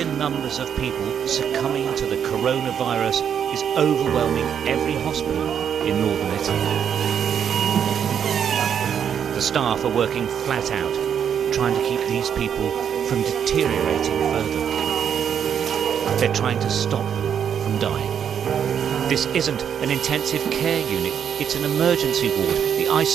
numbers of people succumbing to the coronavirus is overwhelming every hospital in northern Italy. The staff are working flat out, trying to keep these people from deteriorating further. They're trying to stop them from dying. This isn't an intensive care unit, it's an emergency ward. The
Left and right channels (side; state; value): left; quieter; 8.3 dB